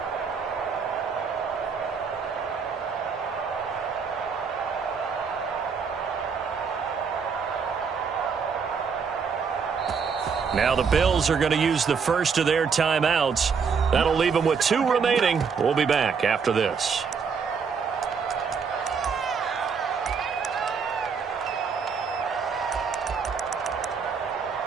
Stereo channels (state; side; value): quieter; left; 5.9 dB